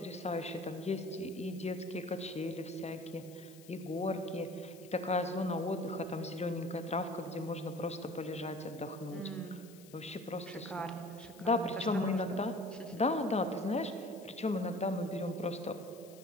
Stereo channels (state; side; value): noise; left; hiss, 21 dB below the sound